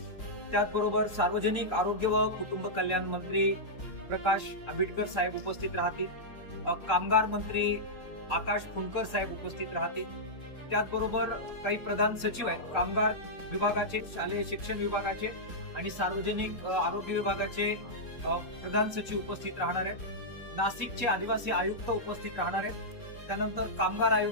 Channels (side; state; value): right; late; 3.7 ms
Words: त्याचबरोबर सार्वजनिक आरोग्य व कुटुंब कल्याण मंत्री प्रकाश आंबेडकर साहेब उपस्थित राहतील. कामगार मंत्री आकाश फुंकर साहेब उपस्थित राहतील. त्याचबरोबर काही प्रधान सचिव आहेत कामगार विभागाचे, शालेय शिक्षण विभागाचे आणि सार्वजनिक आरोग्य विभागाचे प्रधान सचिव उपस्थित राहणार आहेत. नाशिकचे आदिवासी आयुक्त उपस्थित राहणार आहेत. त्यानंतर कामगार